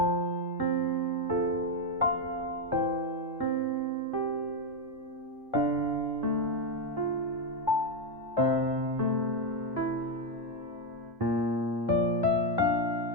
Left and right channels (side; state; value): both; normal; correlation 0.06